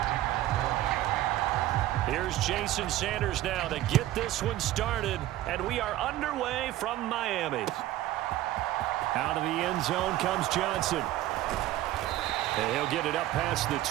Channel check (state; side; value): quieter; left; 14.8 dB